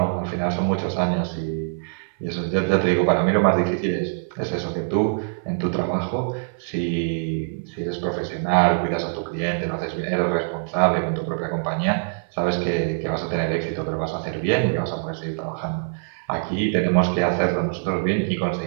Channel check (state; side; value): silent; left; 61 dB below the other